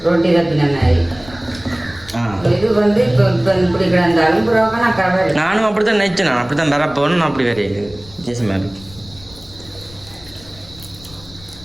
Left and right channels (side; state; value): left; noise; rumble, 21 dB below the sound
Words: ரொட்டி தப்பின மாதிரி இது வந்து இப்போ இப்படி கிடந்தாலும் நானும் அப்படித்தான் நினைச்சேன் நான் அப்படித்தான் வர போகணும் நான் அப்படி வரையில வித்தியாசமா இருக்கு